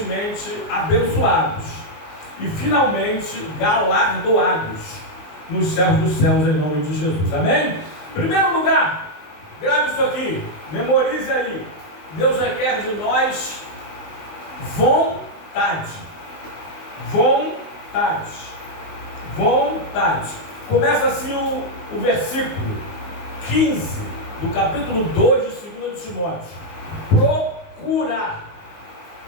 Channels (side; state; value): right; late; 19 ms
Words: abençoados e, finalmente, galardoados nos céus dos céus, em nome de Jesus. Amém? Em primeiro lugar, grave isso aqui, memorize aí. Deus requer de nós vontade. Vontade. Vontade. Começa assim o versículo 15 do capítulo 2 de 2 de Timóteo. Procura.